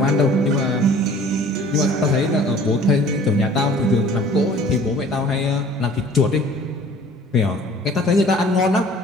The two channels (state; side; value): normal; both; correlation 0.50